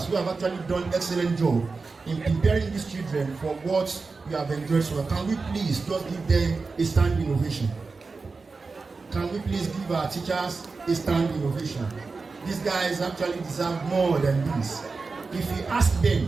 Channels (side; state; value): left; quieter; 4.2 dB